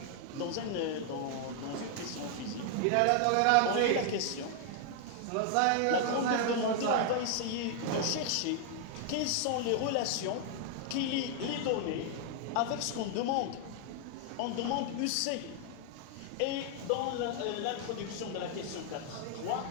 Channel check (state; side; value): different; both; correlation 0.00